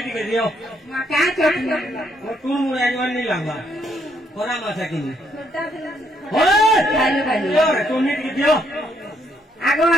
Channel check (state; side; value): normal; both; correlation 0.72